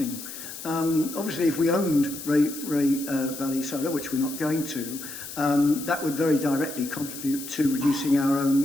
Obviously, if we owned Ray Valley Solar, which we're not going to, that would very directly contribute to reducing our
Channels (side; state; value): left; noise; hiss, 11 dB below the sound